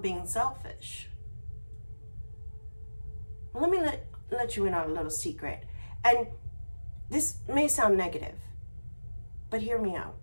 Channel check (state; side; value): inverted; both; correlation -1.00